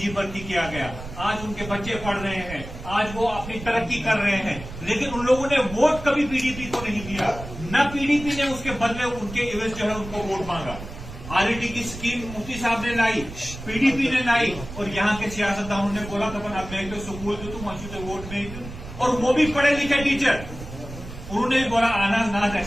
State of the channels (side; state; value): right; noise; rumble, 12 dB below the sound